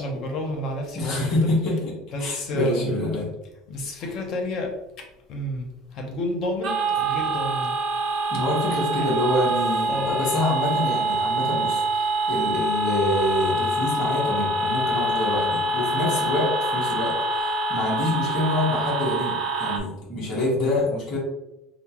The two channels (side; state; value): both; normal; correlation 0.48